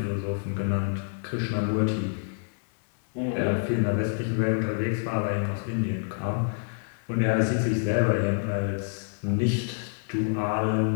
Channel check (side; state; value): right; silent; digital silence